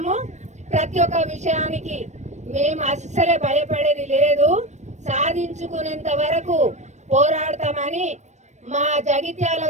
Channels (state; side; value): late; left; 0.34 ms